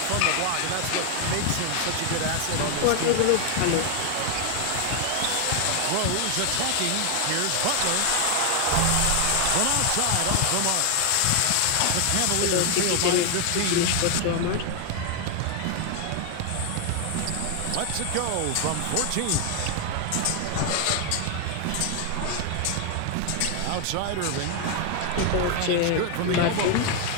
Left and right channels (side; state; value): both; different; correlation 0.00